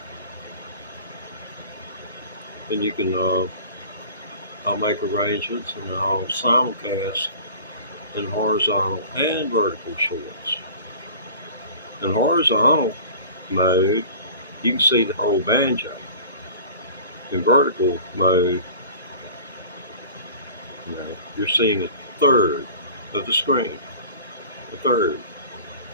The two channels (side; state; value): both; inverted; correlation -0.42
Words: Then you can, I'll make arrangements and I'll simulcast in horizontal and vertical shorts. In horizontal mode, you can see the whole banjo. In vertical mode, you're seeing a third of the screen. A third.